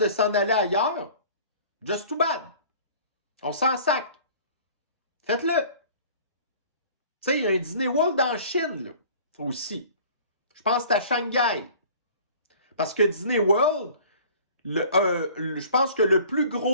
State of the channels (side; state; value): both; inverted; correlation -0.48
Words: s'en aller ailleurs, just too bad. On s'en sac. Faites-le. Tu sais, il y a un Disney World en Chine, là, aussi. Je pense que c'est à Shanghai. Parce que Disney World, je pense que le plus